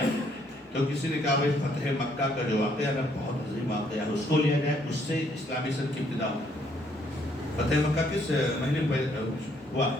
تو کسی نے کہا بھائی فتح مکہ کا جو واقعہ ہے بہت عظیم واقعہ ہے، اس کو لیا جائے، اس سے اسلامی سن کی ابتدا ہو۔ فتح مکہ کس مہینے میں ہوا؟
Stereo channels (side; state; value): both; normal; correlation 0.68